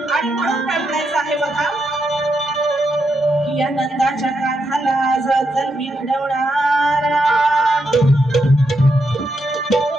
आणि म्हणून काय म्हणायचं आहे बघा, या नंदाच्या काठाला जतन मी घडवणारा,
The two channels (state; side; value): normal; both; correlation 0.82